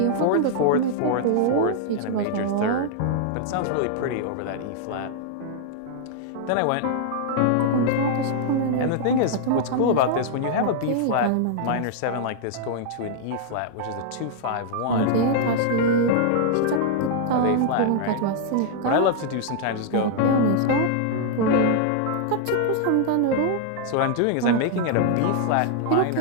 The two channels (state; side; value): different; both; correlation -0.01